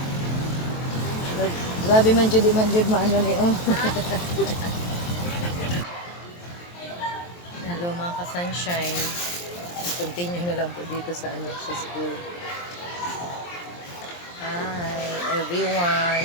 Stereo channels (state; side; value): late; right; 23 ms